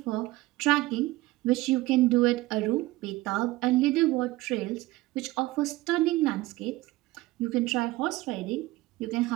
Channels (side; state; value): left; quieter; 19.0 dB